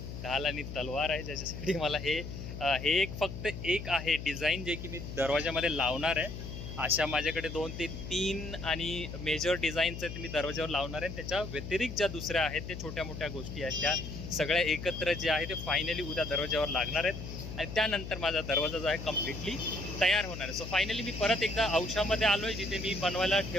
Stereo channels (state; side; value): noise; left; hum, 8 dB below the sound